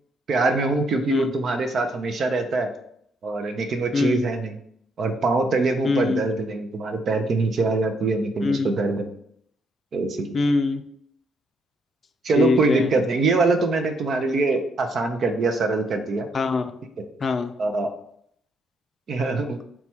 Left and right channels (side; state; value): both; normal; correlation 0.72